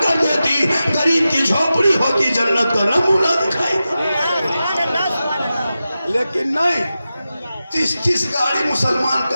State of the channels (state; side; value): inverted; both; correlation -0.93